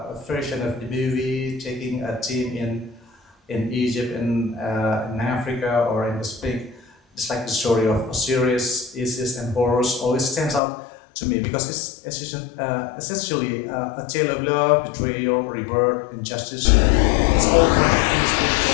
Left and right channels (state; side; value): drops out; right; at 10.6 s